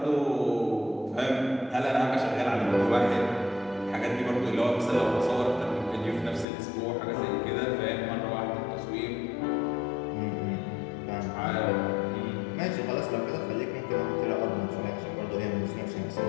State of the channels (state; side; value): drops out; right; at 6.5 s